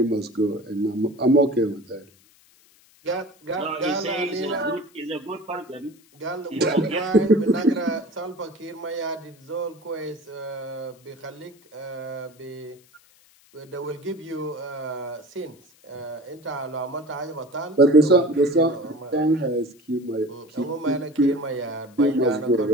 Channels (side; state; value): left; noise; hiss, 29 dB below the sound